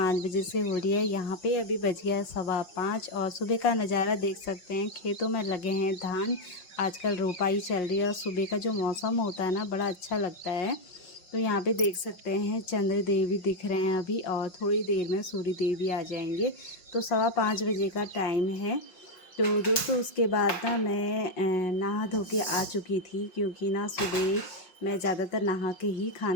बजे से हो रही है। यहाँ पे अभी बज गया है 5:15 और सुबह का नज़ारा देख सकते हैं। खेतों में लगे हैं धान। आजकल रोपाई चल रही है और सुबह का जो मौसम होता है ना, बड़ा अच्छा लगता है। तो यहाँ पे देख सकते हैं चंद्र देव भी दिख रहे हैं अभी, और थोड़ी देर में सूर्य देव भी आ जाएंगे। तो 5:15 बजे का टाइम है। तो दोस्तों, उसके बाद ना मैं नहा धो के आ चुकी थी, क्योंकि ना सुबह मैं ज़्यादातर नहा के ही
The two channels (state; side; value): late; right; 5.5 ms